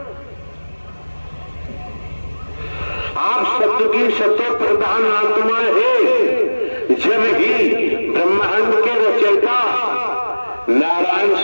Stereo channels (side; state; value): both; inverted; correlation -1.00